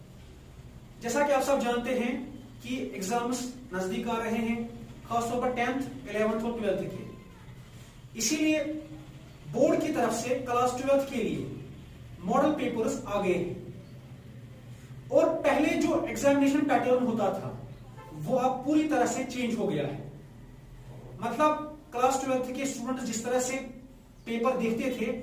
जैसा कि आप सब जानते हैं कि एग्जाम्स नजदीक आ रहे हैं, खासतौर पर 10th, 11th और 12th के। इसीलिए बोर्ड की तरफ से क्लास 12th के लिए मॉडल पेपर्स आ गए हैं और पहले जो एग्जामिनेशन पैटर्न होता था वो अब पूरी तरह से चेंज हो गया है। मतलब क्लास 12th के स्टूडेंट जिस तरह से पेपर देखते थे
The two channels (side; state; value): both; identical; correlation 1.00